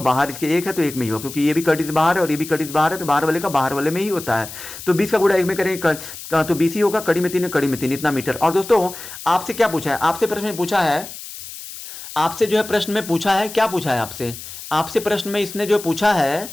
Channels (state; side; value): noise; left; hiss, 12 dB below the sound